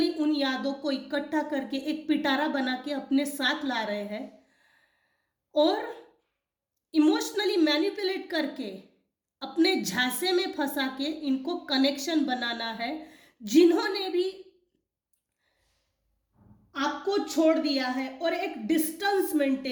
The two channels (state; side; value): identical; both; correlation 1.00